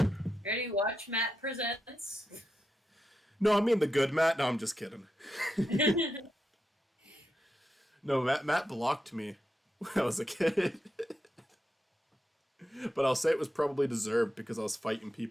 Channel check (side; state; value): both; normal; correlation 0.86